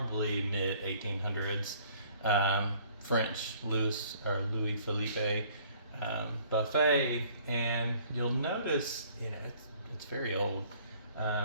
mid 1800s French Louis Philippe buffet, and you'll notice it's very old,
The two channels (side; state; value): both; inverted; correlation -0.57